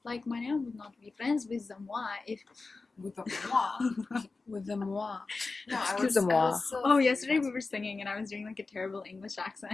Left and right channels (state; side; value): quieter; right; 3.9 dB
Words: like my name would not be friends with them. Why? If with the moi. With the moi. No, Excuse-moi. oh, yesterday we were singing and I was doing like a terrible English